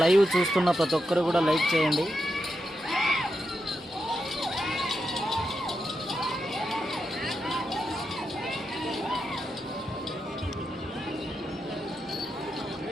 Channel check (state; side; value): normal; both; correlation 0.86